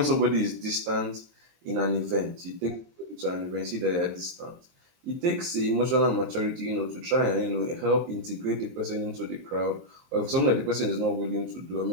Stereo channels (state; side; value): late; left; 23 ms